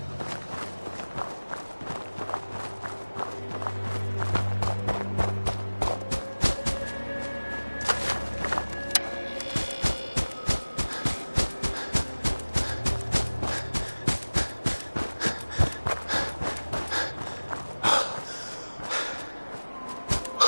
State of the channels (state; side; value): inverted; both; correlation -1.00